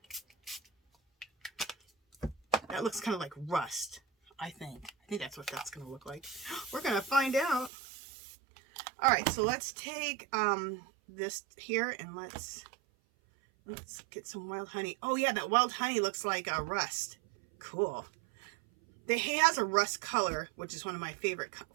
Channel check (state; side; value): drops out; left; at 7.7 s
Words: That looks kind of like rust, I think. I think that's what that's gonna look like. We're gonna find out. All right, so let's take this here and let's get some wild honey. Oh yeah, that wild honey looks like rust. Cool. He has a rust color, which is one of my favorite